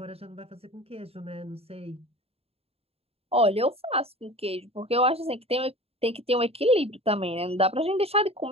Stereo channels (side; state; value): left; late; 0.29 ms